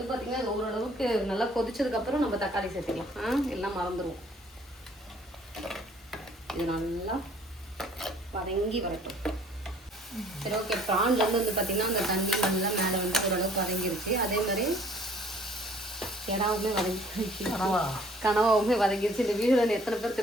பார்த்தீங்கன்னா அது ஓரளவுக்கு நல்லா கொதிச்சதுக்கப்புறம் நம்ம தக்காளி சேர்த்துக்கலாம். எல்லாம் மறந்துடுவோம். இது நல்லா வதங்கி வரட்டும். சரி ஓகே, ப்ரான்லேருந்து வந்து பார்த்தீங்கன்னா அந்த தண்ணி நல்லா மேலே வந்து ஓரளவுக்கு வதங்கிருச்சு. அதே மாதிரி கெடாவுமே வதங்கிருச்சு, கனவாவுமே வதங்கிருச்சு. இந்த வீடியோவில் எத்தனை பேர்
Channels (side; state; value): both; normal; correlation 0.56